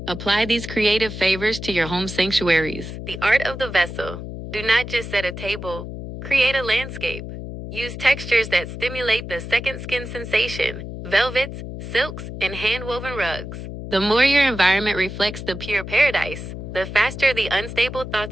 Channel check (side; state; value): left; noise; hum, 9 dB below the sound